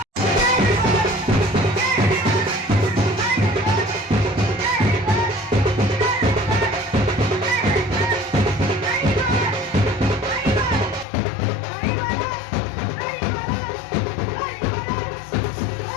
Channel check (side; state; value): right; drops out; at 11.1 s